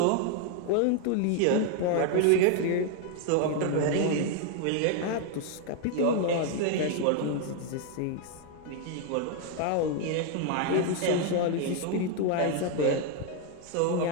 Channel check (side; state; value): both; different; correlation 0.01